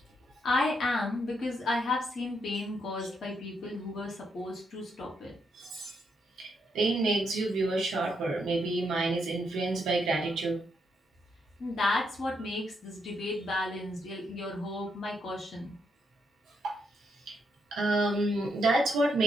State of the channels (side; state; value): both; normal; correlation 0.78